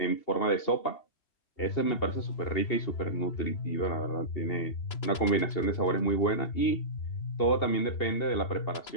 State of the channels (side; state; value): right; late; 2.7 ms